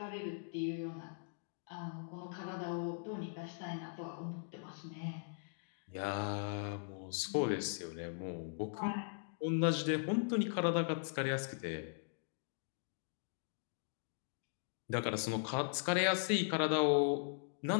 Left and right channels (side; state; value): right; silent; digital silence